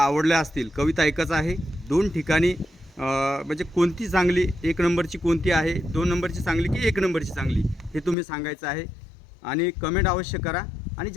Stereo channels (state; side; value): drops out; right; at 8.2 s